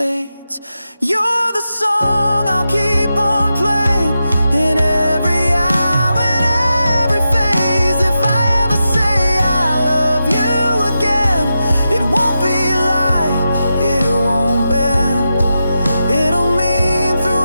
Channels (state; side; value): inverted; both; correlation -0.89